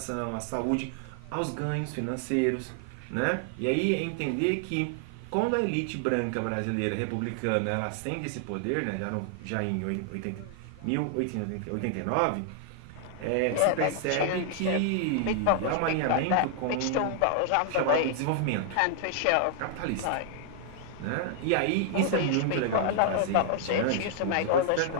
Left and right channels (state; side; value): different; both; correlation 0.00